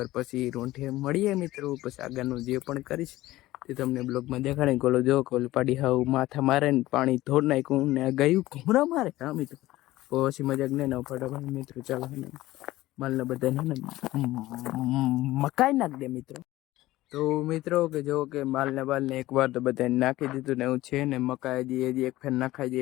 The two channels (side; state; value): right; quieter; 16.8 dB